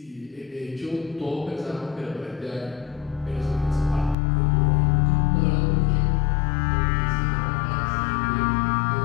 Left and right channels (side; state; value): right; drops out; at 4.2 s